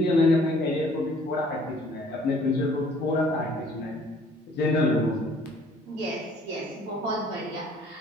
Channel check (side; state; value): both; normal; correlation 0.58